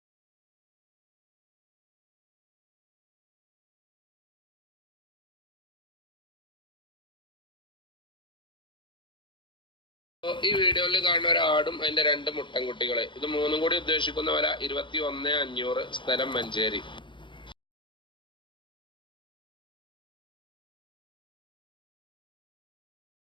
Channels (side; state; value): right; late; 0.23 ms